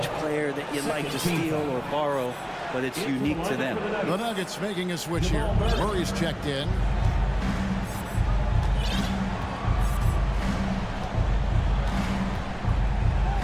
player that you'd like to steal or borrow, but it's unique to them. The Nuggets making a switch here. Murray's checked in.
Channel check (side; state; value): both; identical; correlation 1.00